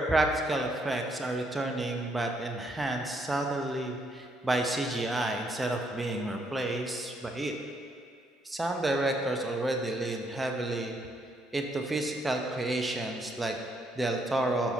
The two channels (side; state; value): both; normal; correlation 0.72